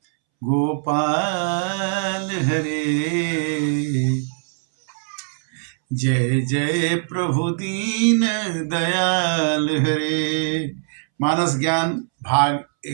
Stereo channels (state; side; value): silent; left; 65 dB below the other